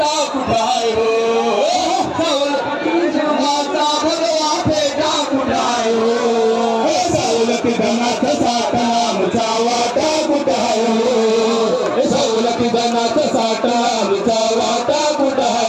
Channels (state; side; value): identical; both; correlation 1.00